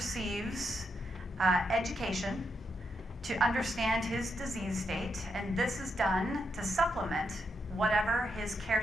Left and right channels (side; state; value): both; normal; correlation 0.82